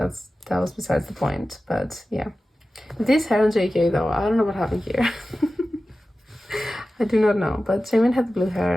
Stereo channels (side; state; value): both; normal; correlation 0.95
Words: was besides the point. But yeah, this hair on JK though, I don't know what happened here. I do not know, but Jamin had blue